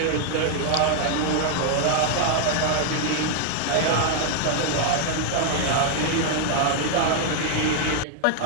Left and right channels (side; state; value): both; different; correlation 0.00